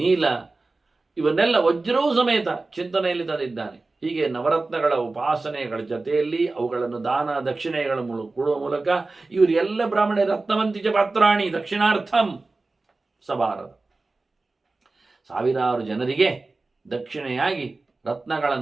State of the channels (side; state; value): left; quieter; 3.4 dB